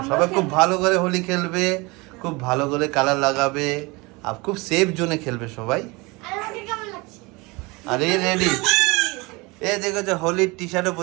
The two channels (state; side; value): quieter; left; 25.2 dB